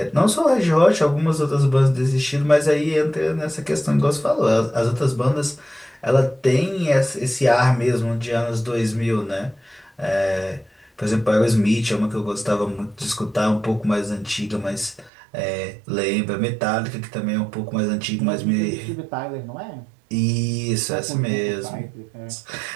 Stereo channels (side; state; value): left; drops out; at 15.1 s